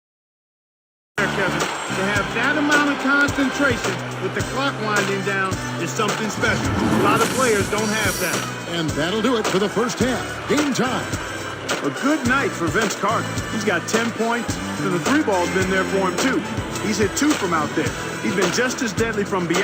Kevin, to have that amount of concentration with the clock winding down is something special. A lot of players don't have that. And that'll do it for the first half. Game time. A good night for Vince Carter. He's got 10 points, and the 3 ball's been there for him, too. He's hit 2 from out there. He's been just as deadly from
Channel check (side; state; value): both; identical; correlation 1.00